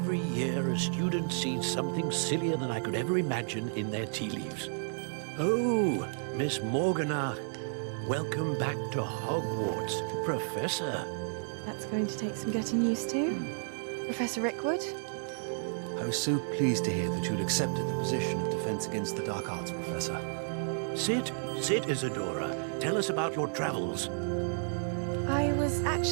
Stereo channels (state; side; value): silent; left; digital silence